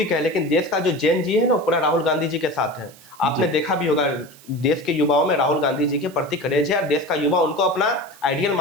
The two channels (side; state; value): right; noise; hiss, 23 dB below the sound